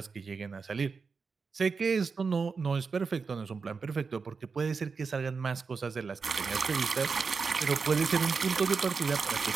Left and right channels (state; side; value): quieter; left; 5.0 dB